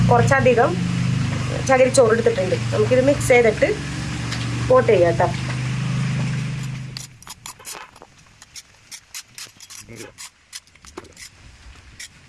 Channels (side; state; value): both; identical; correlation 1.00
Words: കുറച്ചധികം ചകിരിച്ചോറ് എടുത്തിട്ടുണ്ട്. നമുക്കിത് മിക്സ് ചെയ്തിട്ട് പോട്ട് ചെയ്യാം കേട്ടോ.